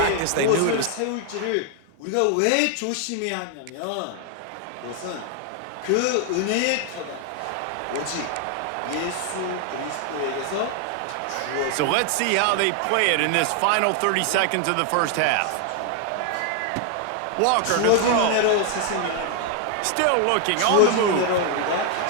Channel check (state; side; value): different; both; correlation 0.00